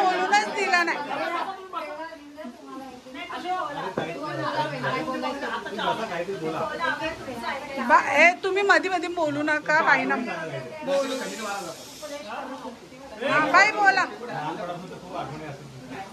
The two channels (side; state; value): both; identical; correlation 1.00